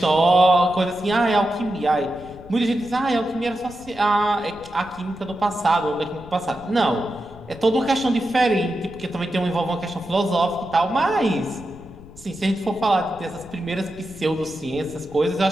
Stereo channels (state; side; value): noise; left; rumble, 19 dB below the sound